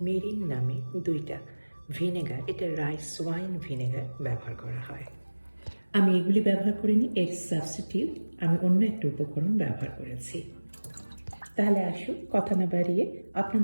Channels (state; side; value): inverted; both; correlation -1.00